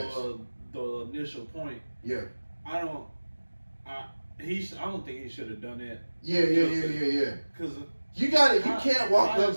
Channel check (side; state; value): both; inverted; correlation -1.00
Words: ass. the initial point, Yeah. I don't think he should have done that. Yeah. Because You got it. You Kai- can't walk Kai up